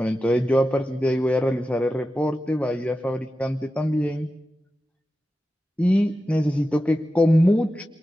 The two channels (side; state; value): both; normal; correlation 0.92